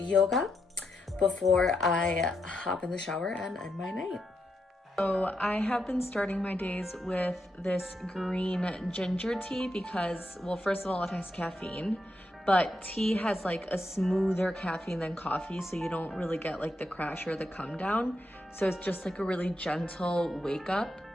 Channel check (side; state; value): both; normal; correlation 0.83